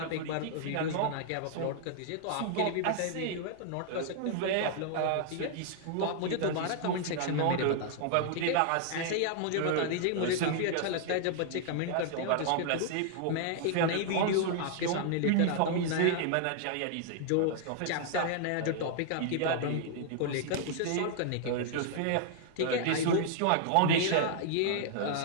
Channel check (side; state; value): both; different; correlation -0.01